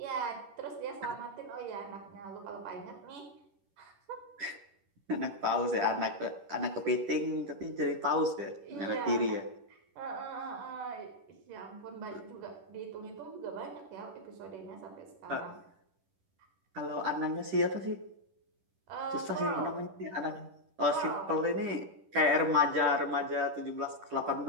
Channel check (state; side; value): late; left; 10 ms